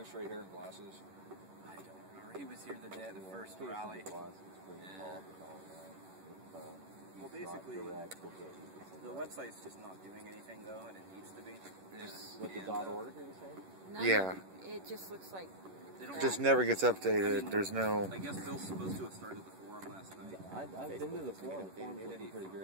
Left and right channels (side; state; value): left; late; 11 ms